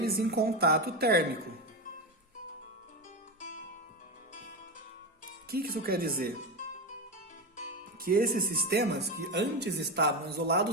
em contato térmico. O que isso quer dizer? Que esses sistemas que antes estavam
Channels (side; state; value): both; normal; correlation 0.16